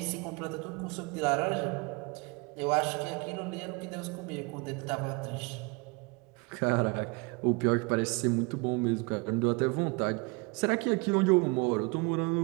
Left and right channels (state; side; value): quieter; left; 28.9 dB